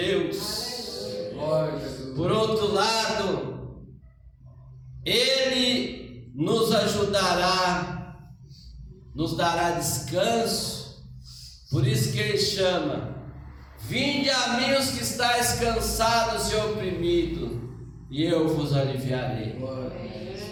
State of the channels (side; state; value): both; identical; correlation 1.00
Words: Por outro lado, Ele nos ajudará, nos dará descanso. Por isso que Ele chama: vinde a mim os que estáis cansados e oprimidos, e eu vos aliviarei.